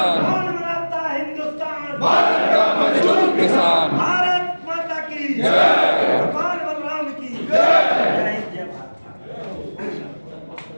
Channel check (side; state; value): both; inverted; correlation -1.00